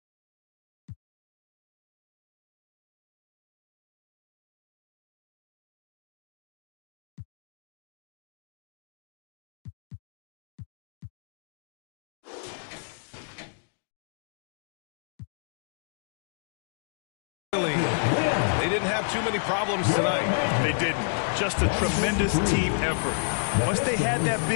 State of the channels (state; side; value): silent; right; digital silence